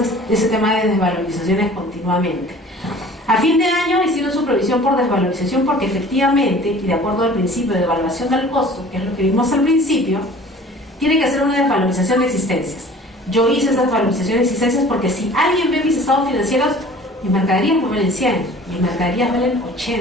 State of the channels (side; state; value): both; normal; correlation 0.47